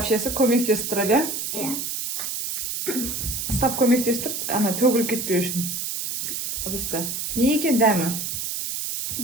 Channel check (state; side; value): noise; right; hiss, 3 dB below the sound